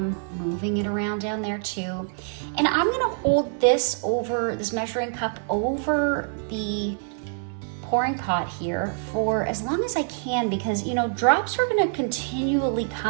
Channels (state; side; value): silent; left; 61 dB below the other